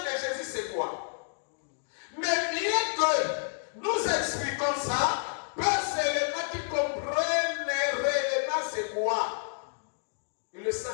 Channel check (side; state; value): right; silent; digital silence